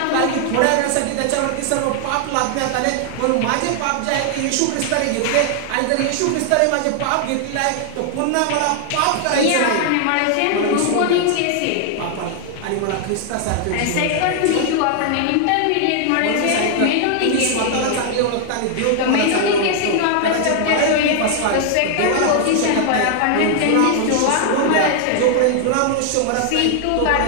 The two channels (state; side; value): different; both; correlation 0.00